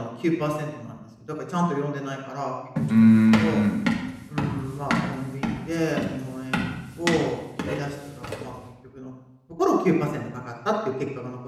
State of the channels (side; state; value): both; identical; correlation 1.00